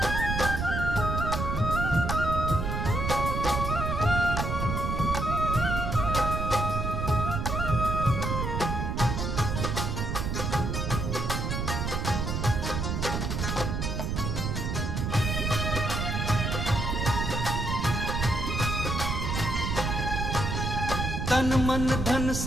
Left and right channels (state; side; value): noise; right; rumble, 1 dB below the sound